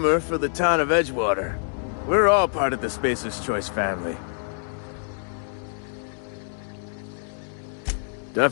for the town of Edgewater. We're all part of the Spacer's Choice family.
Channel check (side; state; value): right; silent; digital silence